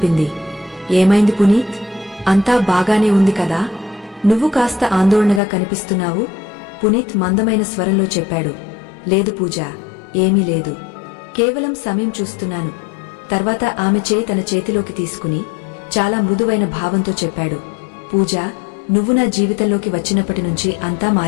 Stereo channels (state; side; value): drops out; right; at 5.4 s